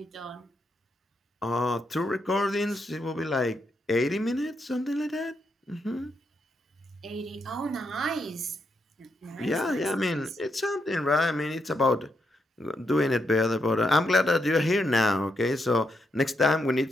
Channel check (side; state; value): both; normal; correlation 0.81